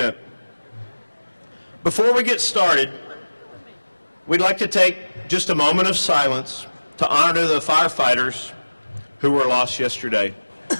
Before we get started, we'd like to take just a moment of silence to honor the firefighters who were lost yesterday.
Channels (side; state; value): both; inverted; correlation -1.00